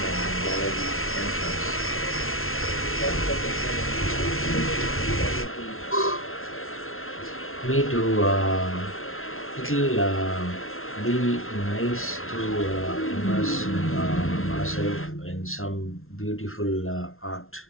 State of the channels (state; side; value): late; right; 0.61 ms